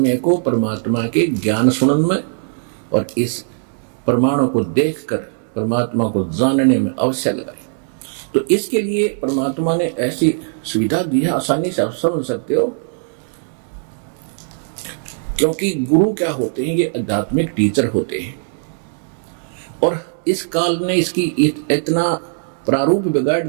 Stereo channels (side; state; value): left; silent; 66 dB below the other